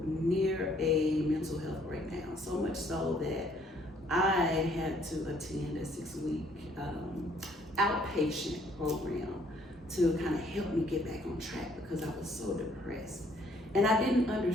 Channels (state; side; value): normal; both; correlation 0.64